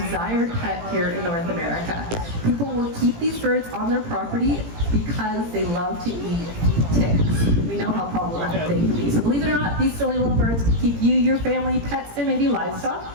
pet here in North America. People people will keep these birds on their property because they love to eat ticks. We know how problematic they can be. So believe it or not, these silly little birds can keep you, your family, pets, and maybe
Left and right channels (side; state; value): left; late; 17 ms